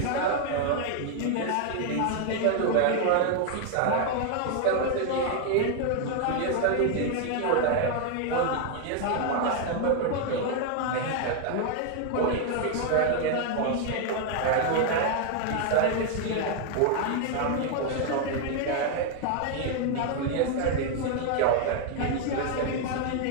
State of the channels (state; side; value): different; both; correlation 0.00